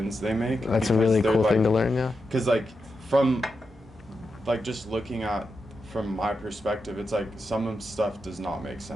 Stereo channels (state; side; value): normal; both; correlation 0.87